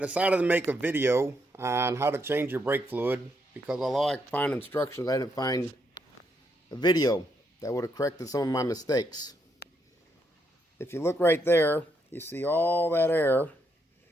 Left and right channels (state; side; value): normal; both; correlation 0.77